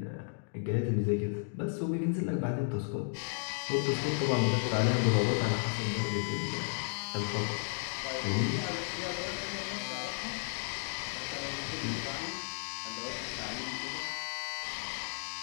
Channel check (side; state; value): right; silent; digital silence